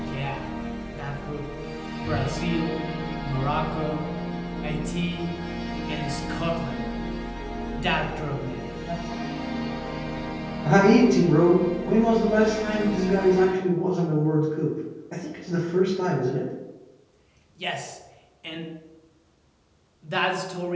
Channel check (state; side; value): identical; both; correlation 1.00